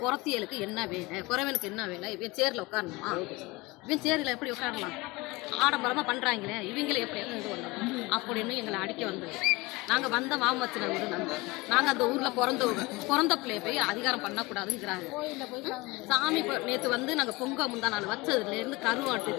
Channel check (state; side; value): quieter; right; 22.8 dB